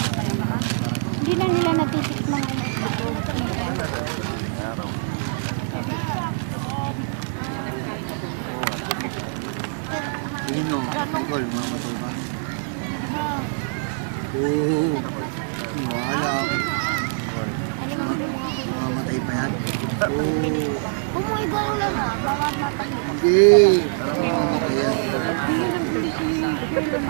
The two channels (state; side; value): silent; left; 63 dB below the other